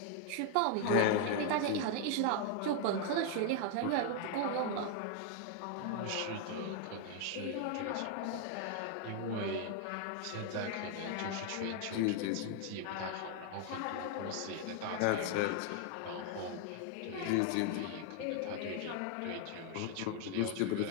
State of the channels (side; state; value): both; different; correlation 0.00